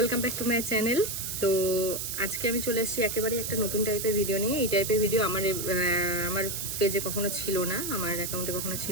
back to my channel. তো আজকে আমি চলে এসেছি একেবারে একটা নতুন টাইপের ভিডিও নিয়ে। এই টাইপের ভিডিও আমার পেজে কখনো ছিল না, আমার অ্যাকাউন্টে কখনো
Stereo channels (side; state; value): right; noise; hiss, 4 dB below the sound